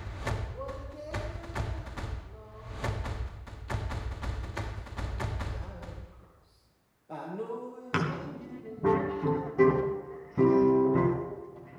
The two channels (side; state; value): both; identical; correlation 1.00